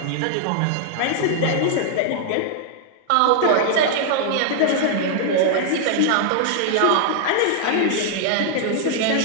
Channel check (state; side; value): different; both; correlation -0.01